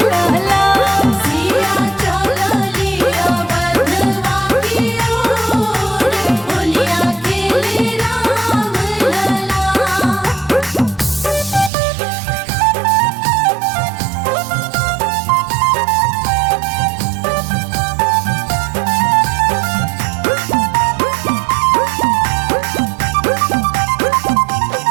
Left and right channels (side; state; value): left; drops out; at 11.7 s